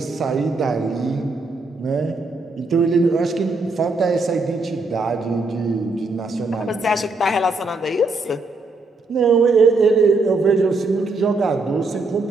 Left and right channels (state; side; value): quieter; left; 3.3 dB